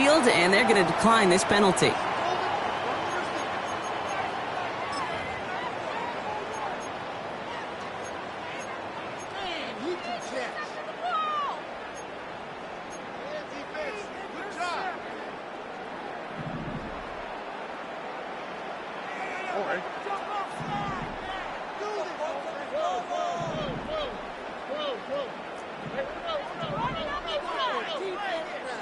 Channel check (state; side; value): identical; both; correlation 1.00